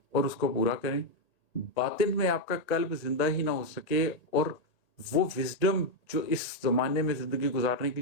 اور اس کو پورا کریں۔ باطن میں آپ کا قلب زندہ ہی نہ ہو سکے اور وہ وزڈم جو اس زمانے میں زندگی گزارنے کے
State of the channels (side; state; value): right; late; 1.8 ms